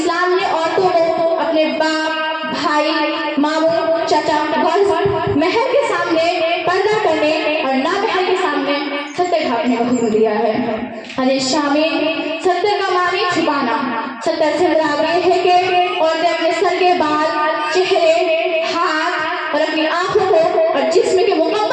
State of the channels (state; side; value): identical; both; correlation 1.00